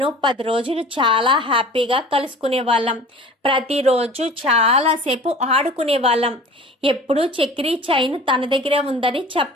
10 రోజులు చాలా హ్యాపీగా కలుసుకునేవాళ్ళం. ప్రతిరోజు చాలాసేపు ఆడుకునేవాళ్ళం. ఎప్పుడూ చక్రి చైన్ తన దగ్గరే ఉందని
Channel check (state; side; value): normal; both; correlation 0.42